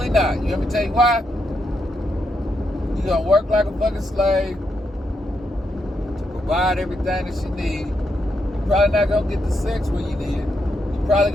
not. You let me tell you why? You're gonna work like a fucking slave to provide everything that she needs. You're probably not gonna get the sex when you need it. You're probably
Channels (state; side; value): normal; both; correlation 0.81